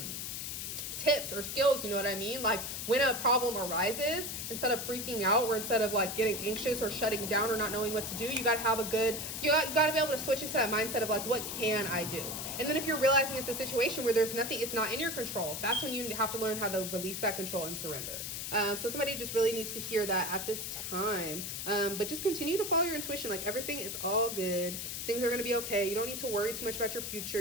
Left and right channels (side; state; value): left; noise; hiss, 5 dB below the sound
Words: tips or skills, you know what I mean? Like, when a problem arises, instead of freaking out, or instead of like getting anxious or shutting down or not knowing what to do, you got to have a good, you got to be able to switch into that mindset of like, what can I do? And then if you're realizing it's a situation where there's nothing, it's not in your control, that's when you have to learn how to release that control and surrender. So somebody just really needs to hear that at this time. But just continue to follow your intuition. Like, everything is all good. Things are going to be okay. You don't need to worry too much about your future.